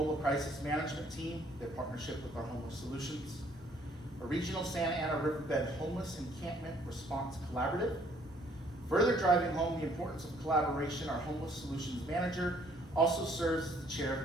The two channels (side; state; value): both; normal; correlation 0.62